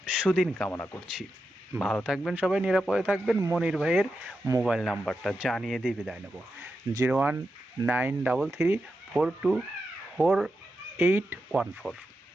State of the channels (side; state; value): both; normal; correlation 0.88